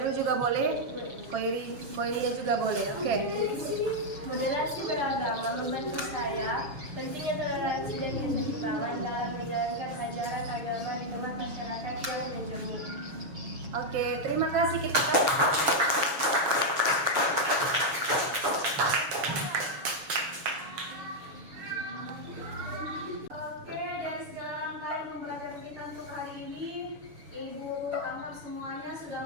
juga boleh, Koirinya juga boleh. Oke. Moderasi beragama membantu saya pentingnya toleransi dan keseimbangan dalam menjalankan ajaran agama di tengah masyarakat yang menjemur. Oke, terima kasih kita. Oke, dari segala rangkaian pembelajaran kita untuk hari ini, Ibu anggap semuanya sudah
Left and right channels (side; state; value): left; late; 6.7 ms